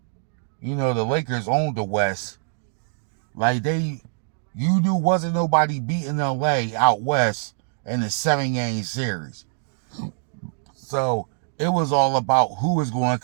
You know, the Lakers owned the West. Like you knew wasn't nobody beating LA out West in the 7-game series. So it was all about who was going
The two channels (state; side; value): silent; left; digital silence